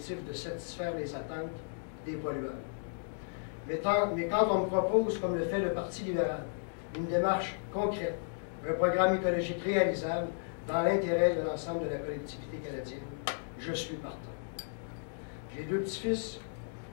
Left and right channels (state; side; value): silent; right; digital silence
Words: de satisfaire les attentes des pollueurs. Mais quand on me propose, comme le fait le Parti libéral, une démarche concrète, un programme écologique réalisable dans l'intérêt de l'ensemble de la collectivité canadienne, je suis partant. J'ai 2 petits-fils